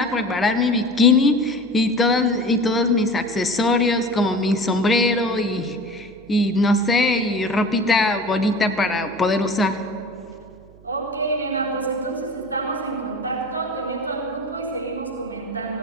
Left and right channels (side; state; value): right; noise; hum, 24 dB below the sound